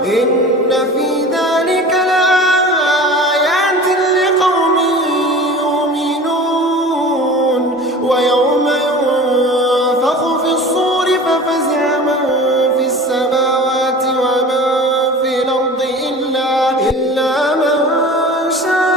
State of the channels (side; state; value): both; normal; correlation 0.38